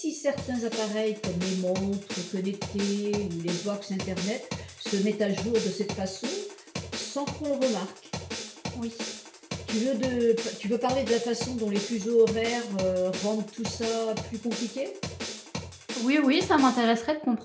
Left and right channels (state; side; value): identical; both; correlation 1.00